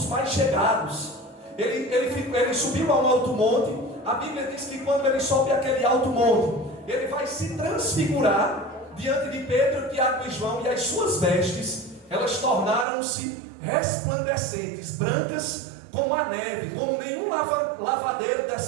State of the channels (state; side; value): drops out; left; at 12.9 s